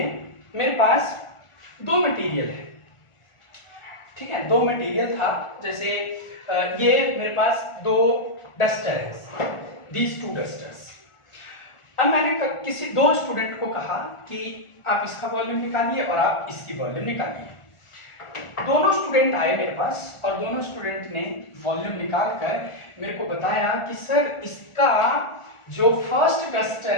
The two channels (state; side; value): late; right; 1.4 ms